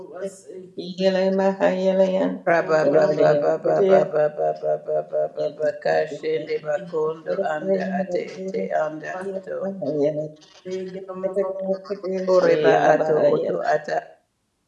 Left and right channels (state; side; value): identical; both; correlation 1.00